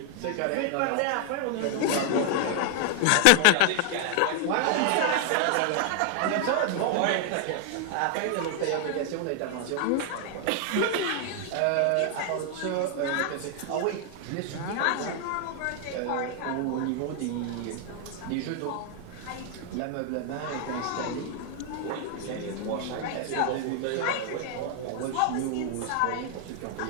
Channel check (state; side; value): different; both; correlation 0.00